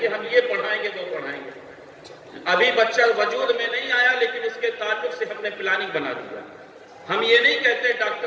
گے، ہم یہ پڑھائیں گے وہ پڑھائیں گے۔ ابھی بچہ وجود میں نہیں آیا لیکن اس کے تعلق سے ہم نے پلاننگ بنا دیا. ہم یہ نہیں کہتے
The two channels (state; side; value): identical; both; correlation 1.00